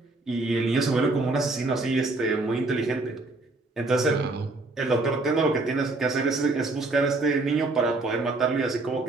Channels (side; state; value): left; quieter; 3.1 dB